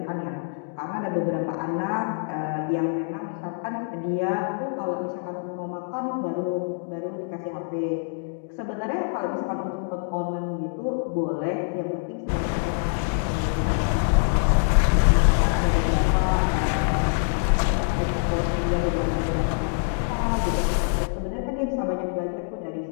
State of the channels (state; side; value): silent; right; digital silence